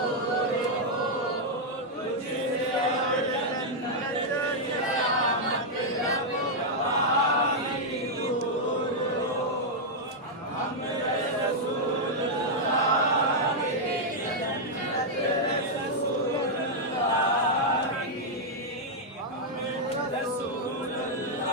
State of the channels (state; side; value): normal; both; correlation -0.04